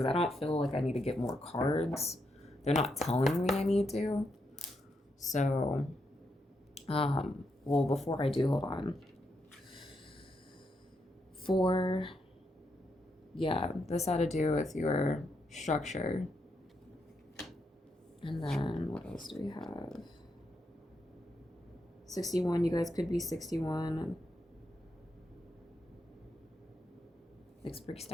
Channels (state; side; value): normal; both; correlation 0.81